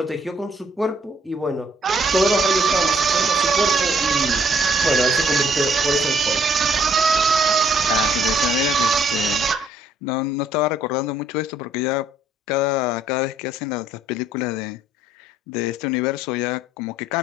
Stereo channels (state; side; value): normal; both; correlation 0.65